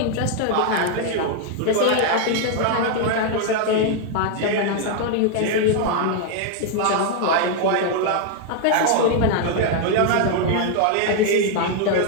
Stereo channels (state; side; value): different; both; correlation 0.00